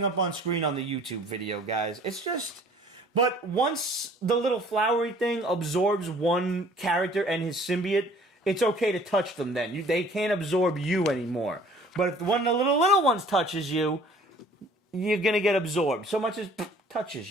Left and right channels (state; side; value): normal; both; correlation 0.53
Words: up on screen on the YouTube video, guys. It's just... But once the little flowery thing absorbs one character and his symbiote, it's okay to touch them then. They can't absorb you anymore. But if one of the little ones touches you, you're gonna get absorbed. So much as touches